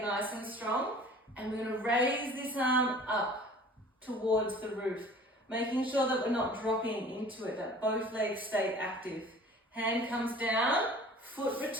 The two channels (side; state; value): both; normal; correlation 0.47